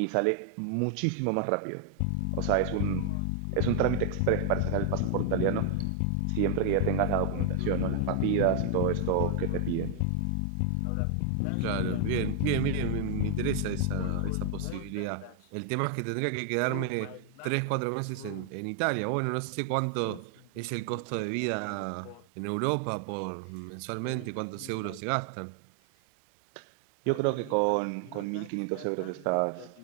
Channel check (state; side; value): different; both; correlation 0.00